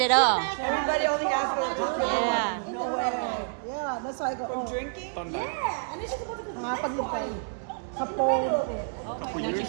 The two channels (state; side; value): silent; left; digital silence